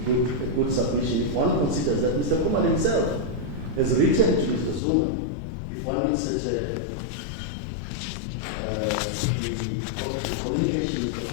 good submission if one considers that Mr. Khumalo himself has written to Mr. Zuma. If one looks at the communication Mr.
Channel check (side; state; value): right; drops out; at 4.8 s